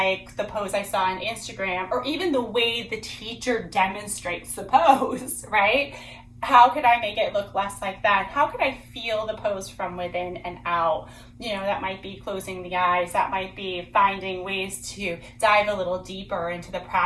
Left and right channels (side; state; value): both; identical; correlation 1.00